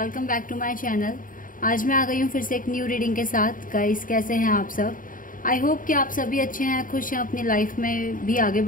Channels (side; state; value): right; late; 0.39 ms